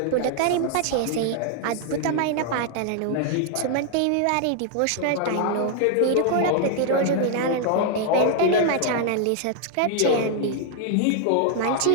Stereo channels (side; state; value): both; different; correlation 0.00